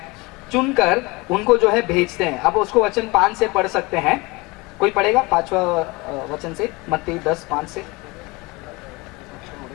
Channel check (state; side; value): quieter; right; 24.5 dB